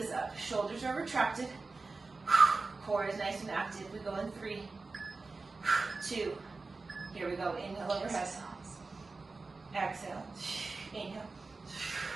up. Shoulders are retracted. Core is nice and active. We go in 3, 2. Here we go. Inhale overhead. Exhale. Inhale.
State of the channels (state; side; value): quieter; left; 3.8 dB